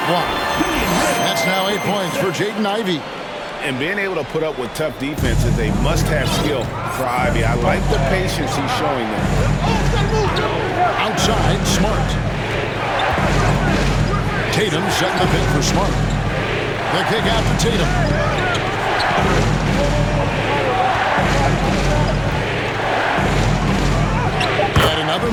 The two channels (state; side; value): identical; both; correlation 1.00